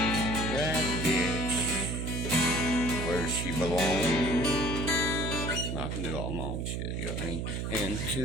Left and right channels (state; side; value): noise; right; hum, 2 dB below the sound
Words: that bitch where she belongs. I can do all my own shit, you know what I mean? And